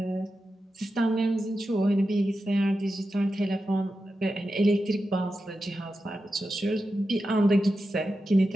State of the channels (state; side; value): normal; both; correlation 0.90